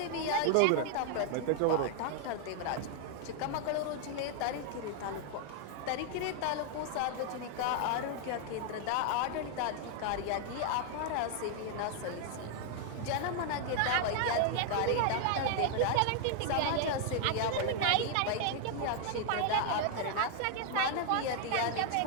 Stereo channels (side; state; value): both; different; correlation 0.00